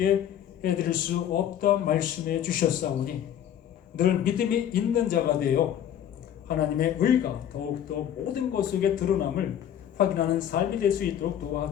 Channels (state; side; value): quieter; right; 10.1 dB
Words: 해드릴 수 없다 말씀해 주셨사오니 늘 믿음이 있는 자가 되어 하나님의 의가 더욱더 모든 것 속에 드러남을 확인하는 삶이 될 수 있도록